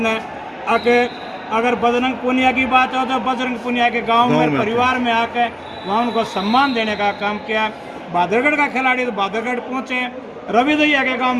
आके। अगर बजरंग पुनिया की बात हो तो बजरंग पुनिया के गांव में परिवार में आके वहाँ उनको सम्मान देने का काम किया। बादरगढ़ का खिलाड़ी तो बादरगढ़ पहुँचे, रवि दहिया के गांव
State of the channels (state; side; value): identical; both; correlation 1.00